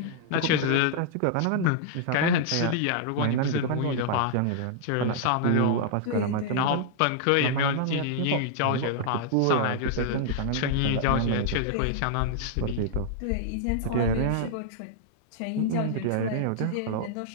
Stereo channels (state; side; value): different; both; correlation -0.01